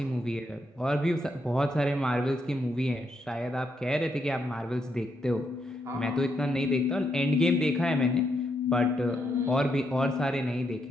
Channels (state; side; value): normal; both; correlation 0.79